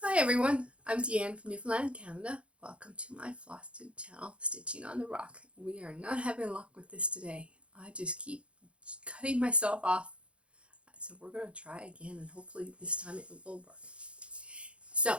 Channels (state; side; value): late; left; 0.060 ms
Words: Hi everyone, I'm Deanne from Newfoundland, Canada. Welcome to my FlossTube channel, Stitching on the Rock. We are not having luck with this today. I just keep cutting myself off. So we're going to try again and hopefully this time it will work.